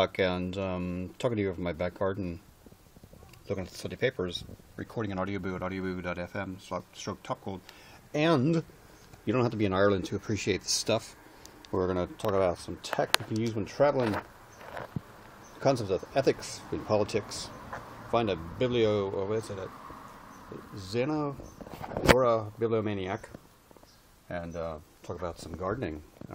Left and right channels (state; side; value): identical; both; correlation 1.00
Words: and talking to you from my back garden, looking at the Sunday papers, recording an audioboo at audioboo.fm, stroke topgold. And you don't have to be in Ireland to appreciate this stuff. We're going to talk about some tech you can use when traveling, concepts of ethics in politics, find a Xenogora bibliomaniac, and talk about some gardening,